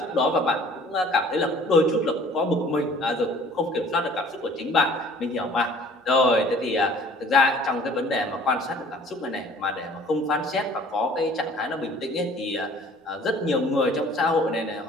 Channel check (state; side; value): normal; both; correlation 0.52